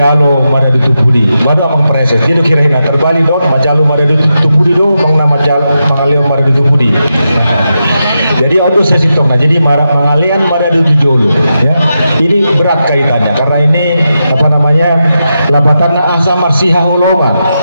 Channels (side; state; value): both; inverted; correlation -0.87